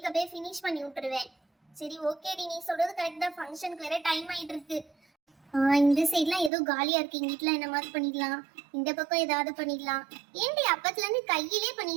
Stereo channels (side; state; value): left; drops out; at 6.5 s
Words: ஃபினிஷ் பண்ணி விட்டுருவேன். சரி ஓகேடி, நீ சொல்றது கரெக்ட் தான். ஃபங்க்ஷனுக்கு வேற டைம் ஆயிட்டு இருக்கு. இந்த சைட்லாம் ஏதோ காலியா இருக்கு. இங்க வீட்டுல என்ன மாதிரி பண்ணிடலாம். இந்த பக்கம் ஏதாவது பண்ணிடலாம். ஏன்டி அப்பத்துல இருந்து கையிலே